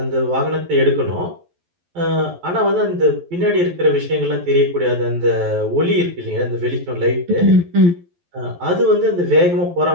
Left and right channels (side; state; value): left; late; 11 ms